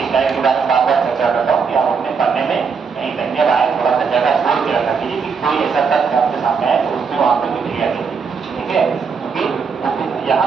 स्लाइड के बारे में बार बार चर्चा करता हूँ कि आप अपने पढ़ने में कहीं कहीं आए थोड़ा सा जगह छोड़ के रखा कीजिए कि कोई ऐसा तथ्य आपके सामने आए तो उसमें वहां पर लिख लिया कीजिए, ठीक है। क्योंकि यहाँ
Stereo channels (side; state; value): left; quieter; 5.6 dB